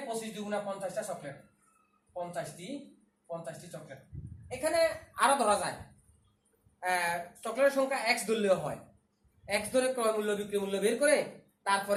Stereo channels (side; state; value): both; identical; correlation 1.00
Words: 25 2 × 50টা চকলেট, 50টি চকলেট। এখানে আরো ধরা যায়, চকলেটের সংখ্যা x ধরলেও হয়। x ধরে ক্রয় মূল্য বিক্রয় মূল্য বের করে